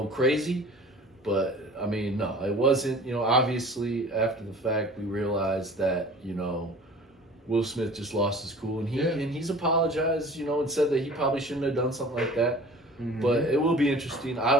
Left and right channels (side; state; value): both; normal; correlation 0.44